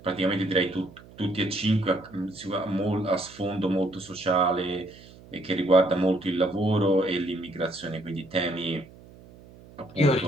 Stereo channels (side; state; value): right; noise; hum, 21 dB below the sound